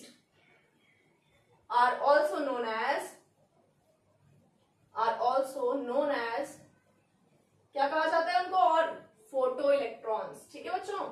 are also known as क्या कहा जाता है उनको, और फोटो इलेक्ट्रॉन्स, ठीक है बच्चों,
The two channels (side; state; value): both; identical; correlation 1.00